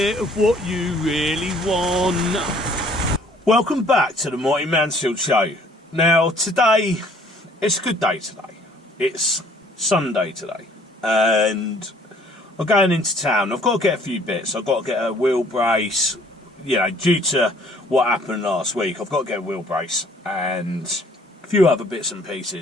of what you really want. Welcome back to the Mighty Mansfield Show. Now, today, it's a good day today. It's Sunday today. And I'm going into town. I've got to get a few bits. I've got to get a wheel brace. You know, due to what happened last week, I've got to get a wheel brace and a few other bits and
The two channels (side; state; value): both; normal; correlation 0.58